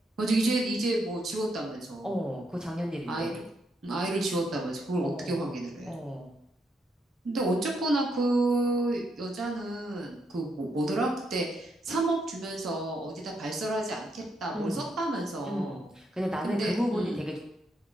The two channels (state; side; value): normal; both; correlation 0.78